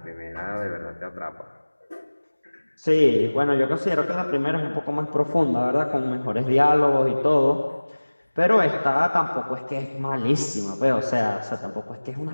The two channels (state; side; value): inverted; both; correlation -1.00